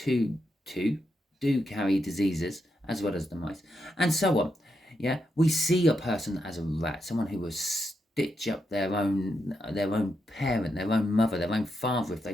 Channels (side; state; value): both; normal; correlation 0.83